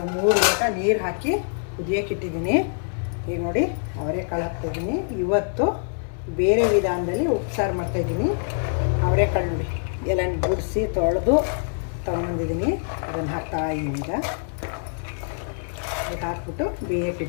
3 ಲೋಟ ನೀರು ಹಾಕಿ ಕುದಿಯೋಕೆ ಇಟ್ಟಿದ್ದೀನಿ. ಈಗ ನೋಡಿ ಅವರೆಕಾಳು ಹಾಕ್ತಾಯಿದ್ದೀನಿ. ಇವತ್ತು ಬೇರೆ ವಿಧಾನದಲ್ಲಿ ಉಪ್ಸಾರು ಮಾಡ್ತಾಯಿದ್ದೀನಿ. ಅವರೆಕಾಳು ನೋಡಿ ಎಲ್ಲ ಗುಡಿಸಿ ತೊಳೆದು ತೊಗೊಂಬಂದಿದ್ದೀನಿ. ಅದನ್ನು ಹಾಕ್ತಾ ಇದ್ದೀನಿ. ಈಗ ಅದಕ್ಕೆ ಹಾಕ್ಬಿಟ್ಟು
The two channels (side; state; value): right; silent; 62 dB below the other